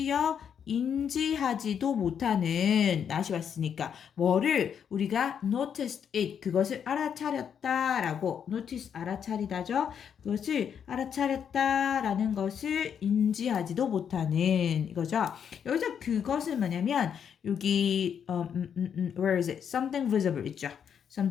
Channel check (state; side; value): quieter; right; 7.9 dB